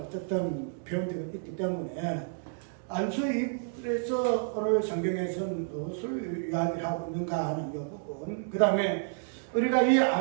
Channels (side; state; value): left; silent; digital silence